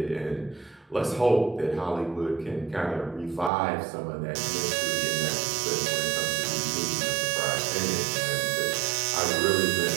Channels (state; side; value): drops out; left; at 3.5 s